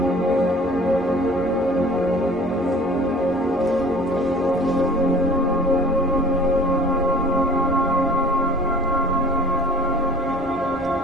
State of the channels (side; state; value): both; normal; correlation 0.48